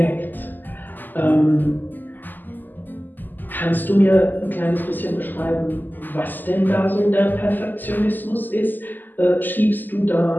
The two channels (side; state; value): right; late; 0.088 ms